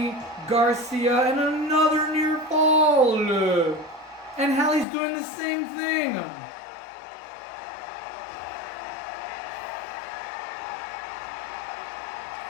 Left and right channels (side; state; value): right; drops out; at 4.9 s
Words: Garcia and another near fall. And Hallie's doing the same thing.